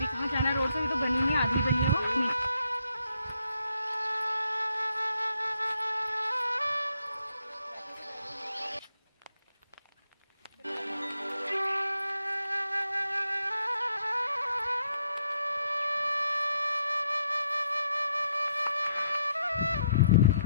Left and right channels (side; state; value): both; inverted; correlation -0.73